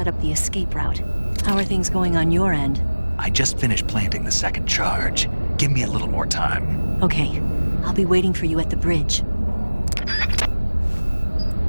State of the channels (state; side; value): inverted; both; correlation -1.00